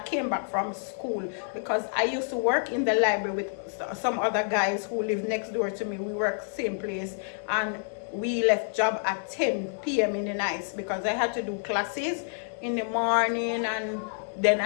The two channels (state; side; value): silent; right; digital silence